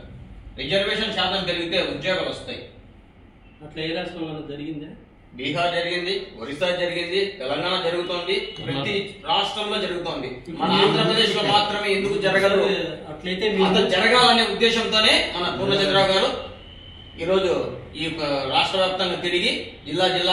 రిజర్వేషన్ శాతం పెరిగితే ఉద్యోగాలు వస్తాయి. అట్లా ఏ రాష్ట్రంలో జరిగిందా? బీహార్ జరిగింది, ఒరిస్సా జరిగింది, తెలంగాణ జరుగుతోంది, ప్రతి రాష్ట్రంలో జరుగుతోంది. మన ఆంధ్రప్రదేశ్ లో మాత్రమే ఎందుకు జరగదు? అట్లయితే జరగాలనే ఉద్దేశంతోనే మన పూర్ణచంద్రరావు గారు ఈరోజు ఈ రాష్ట్ర వ్యాప్తంగా తిరిగి జిల్లా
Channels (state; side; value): identical; both; correlation 1.00